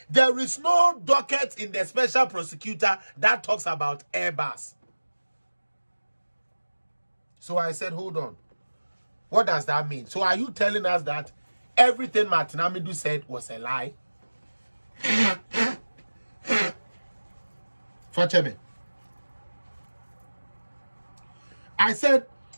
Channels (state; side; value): inverted; both; correlation -1.00